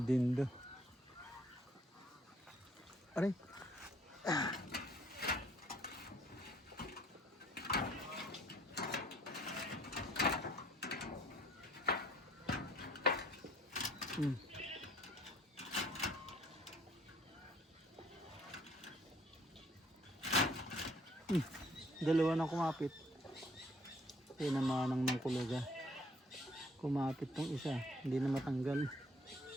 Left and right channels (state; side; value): normal; both; correlation 0.60